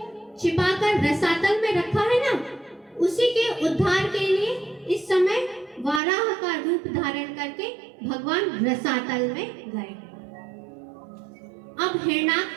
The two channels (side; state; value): left; drops out; at 6.0 s